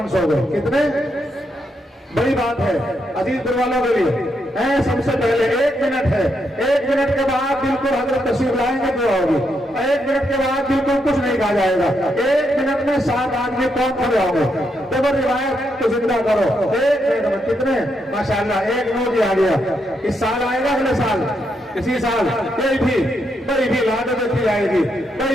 دو. کتنے بڑی بات ہے عزیز دل والوں کے لیے. سب سے پہلے 1 منٹ ہے, 1 منٹ کے بعد بالکل حضرت تشریف لائیں گے دعا ہوگی. 1 منٹ کے بعد بالکل کچھ نہیں کہا جائے گا. 1 منٹ میں 7 آدمی کون کھڑے ہوں گے, تو روایت کو زندہ کرو. 1 منٹ میں کتنے, ماشاءاللہ 1 نوٹ ہی آ گیا. اس سال آئے گا, اگلے سال, اسی سال کوئی بھی لاڈو دیکھی جائے گی,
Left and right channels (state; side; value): normal; both; correlation 0.80